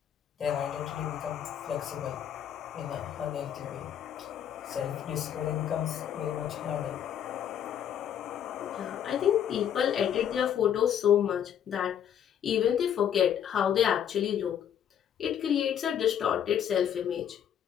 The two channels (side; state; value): right; quieter; 9.4 dB